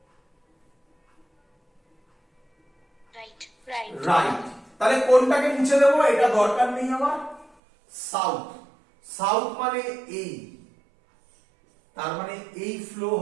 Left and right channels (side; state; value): left; drops out; at 7.5 s